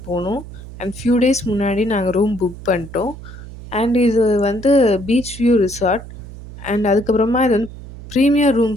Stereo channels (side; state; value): right; noise; hum, 14 dB below the sound